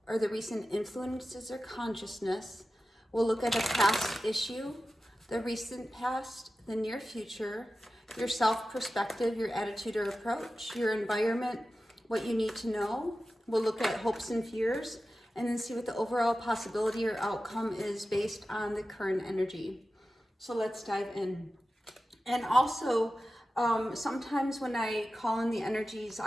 or the recent influences or consciousness. We'll look at a past issue, the recent past, the near future, your self-perspective, your attitude or approach, your environment, what you need to know. We'll look at hopes and fears, and then see what the overall possibility or outcome is based on the current energy. So let's dive in. And also, sometimes when I call in the energies,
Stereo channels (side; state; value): both; normal; correlation 0.94